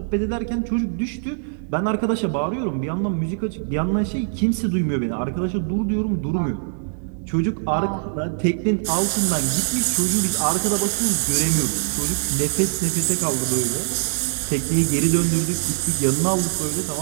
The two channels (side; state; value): left; silent; digital silence